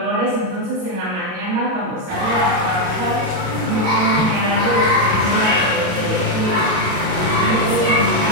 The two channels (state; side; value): late; left; 32 ms